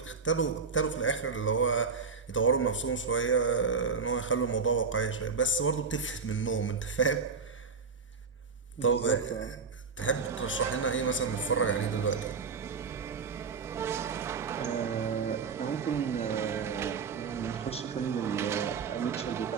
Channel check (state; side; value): quieter; left; 5.2 dB